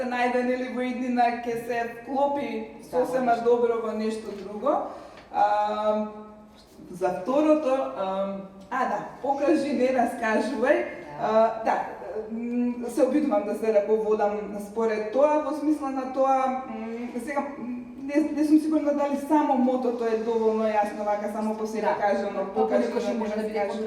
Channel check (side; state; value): both; identical; correlation 1.00